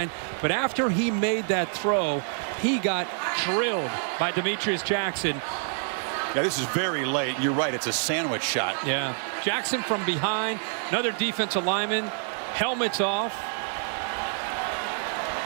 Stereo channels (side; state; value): left; silent; 58 dB below the other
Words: But after he made that throw, he got drilled by Demetrius Jackson. Yeah, this is very late. You're right. It's a sandwich shot. Yeah. Jackson from behind. Another defensive lineman. Helmets off.